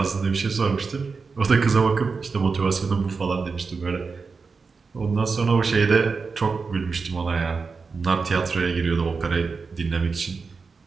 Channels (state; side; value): quieter; left; 4.8 dB